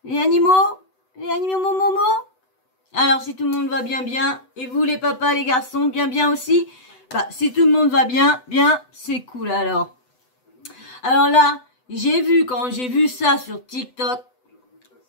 Les animaux? Les animaux momo? Alors si tout le monde va bien bien, et vous les papas, les garçons, bien bien aussi? Bah si tout le monde va bien, bien, c'est cool alors. Alors là, quand j'ai vu ça sur TikTok,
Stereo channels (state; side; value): late; right; 8.0 ms